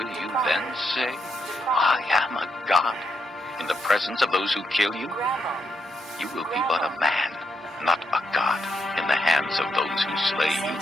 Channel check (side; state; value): both; normal; correlation 0.80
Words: you then say, I am a god, in the presence of those who kill you? You will be but a man, not a god, in the hands of those who slay you.